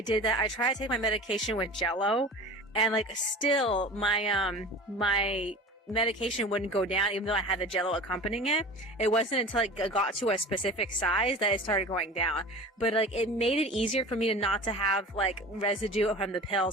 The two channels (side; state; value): both; normal; correlation 0.37